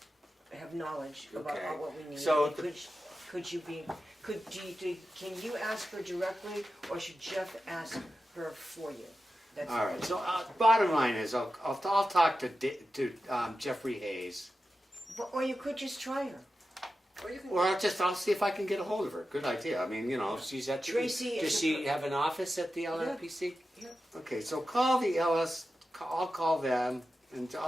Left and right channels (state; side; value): normal; both; correlation 0.92